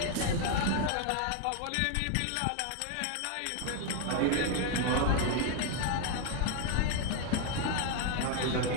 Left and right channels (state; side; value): different; both; correlation 0.00